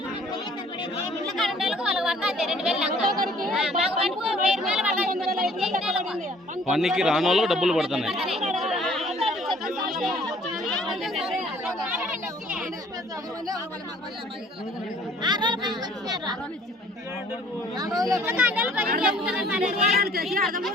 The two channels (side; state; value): both; normal; correlation 0.56